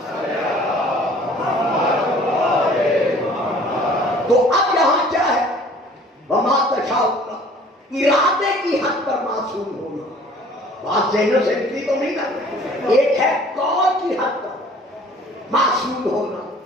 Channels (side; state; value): both; normal; correlation 0.52